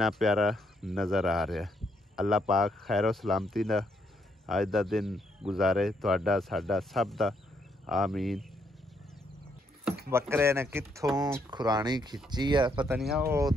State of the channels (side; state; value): both; normal; correlation 0.74